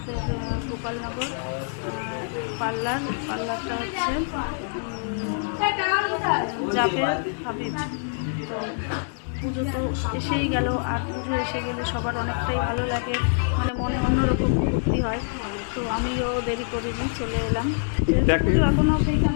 গোপালনগর পার্লারটা হচ্ছে জাবের হাবিব। তো পুজো তো এসেই গেল, আর পুজো এসে গেলে সবার অনেকটাই ভালো লাগে, মানে মনে অন্যরকম ফুর্তি হয়। তো আমিও দেরি করিনি, চলে এলাম। পুজো এখনও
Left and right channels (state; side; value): silent; right; 61 dB below the other